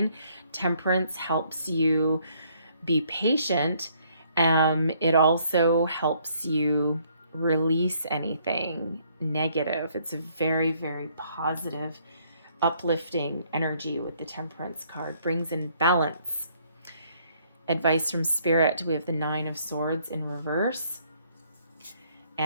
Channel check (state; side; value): inverted; both; correlation -0.66